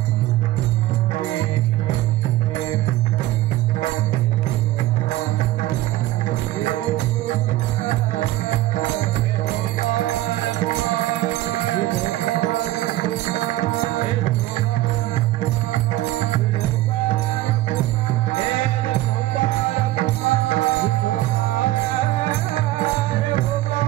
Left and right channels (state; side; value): quieter; left; 16.0 dB